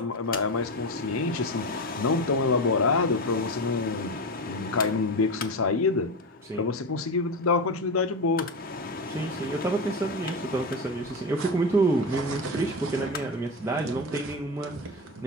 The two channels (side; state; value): both; normal; correlation 0.19